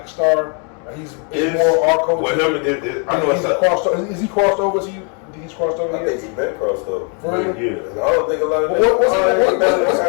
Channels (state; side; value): quieter; right; 38.8 dB